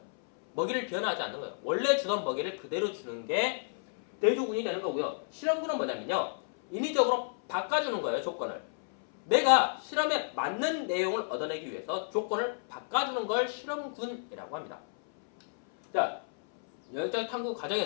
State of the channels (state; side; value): silent; right; 57 dB below the other